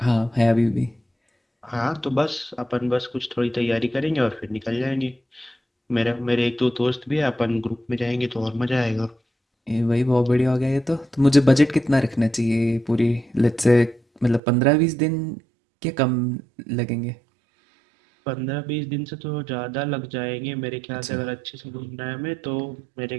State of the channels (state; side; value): drops out; left; at 14.4 s